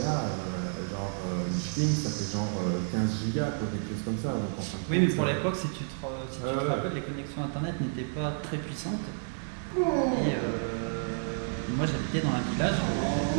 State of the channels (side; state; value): left; silent; digital silence